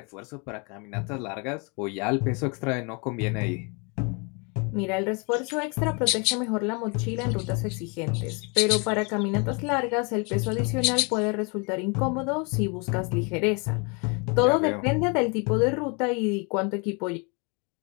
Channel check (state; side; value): quieter; right; 32.7 dB